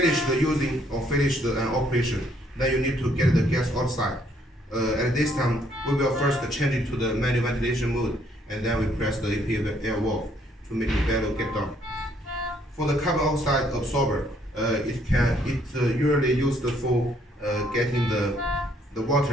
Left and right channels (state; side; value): normal; both; correlation 0.67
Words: the using or finish the operation, then you need to get the gas outside. At this time, we will first change it to the manual ventilation mode, and then we press the APL valve to make the bellow get down. For the carbon oxide absorber, it usually used for getting the